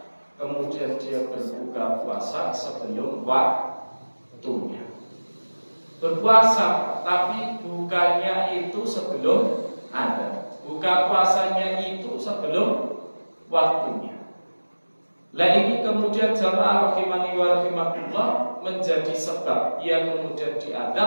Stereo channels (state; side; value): inverted; both; correlation -1.00